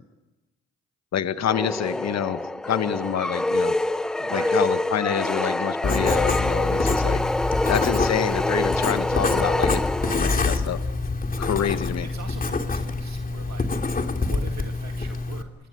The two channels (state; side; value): quieter; right; 3.6 dB